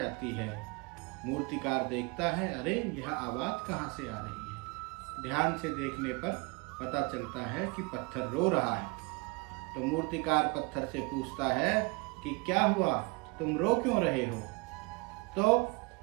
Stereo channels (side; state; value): left; quieter; 28.2 dB